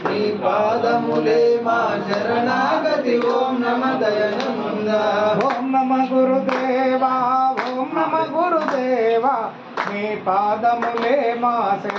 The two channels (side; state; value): both; identical; correlation 1.00